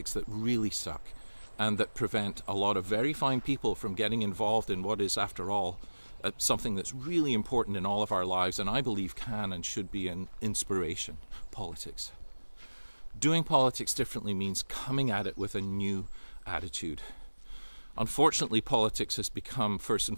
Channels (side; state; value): both; inverted; correlation -1.00